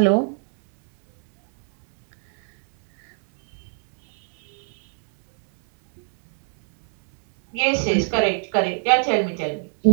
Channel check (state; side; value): silent; left; digital silence